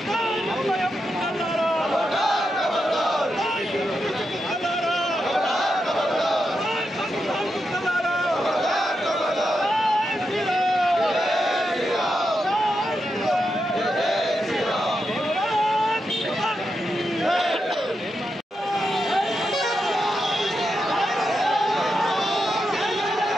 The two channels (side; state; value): both; normal; correlation 0.86